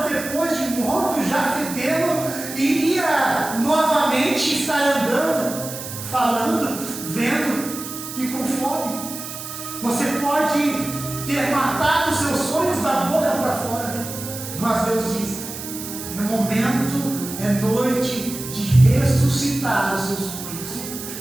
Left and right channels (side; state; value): right; noise; hiss, 9 dB below the sound